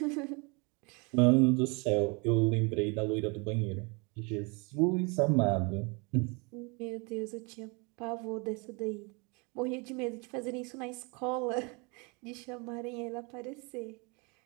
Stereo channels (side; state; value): left; quieter; 30.4 dB